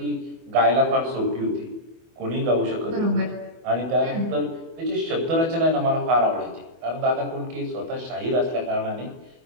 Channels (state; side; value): late; left; 24 ms